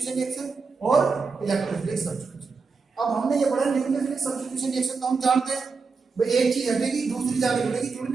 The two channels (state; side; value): quieter; left; 4.7 dB